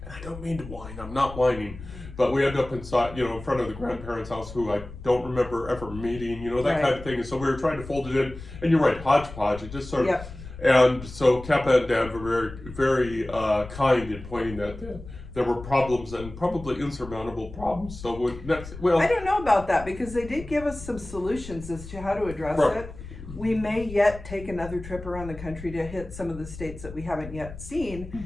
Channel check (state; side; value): noise; left; rumble, 14 dB below the sound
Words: and I don't mean to whine. I'm not whining. But we ended up inside, you know, in front of the grandparents' house, who I don't remember ever meeting, you know, that kind of thing. And so we were trying to fold it in, and you're right, hodgepodge. It just sort of, and so Kappa and Dan were very, very kind in pointing that there were problems and probably insurmountable problems. So I don't know about that, because they did give us some solutions as to how to address it. We may yet take another trip around the country to hit some of the states that we haven't yet